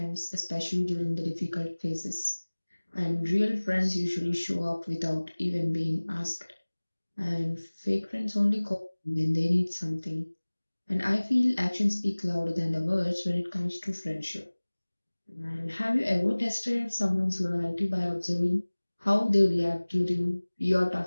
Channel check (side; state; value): both; inverted; correlation -1.00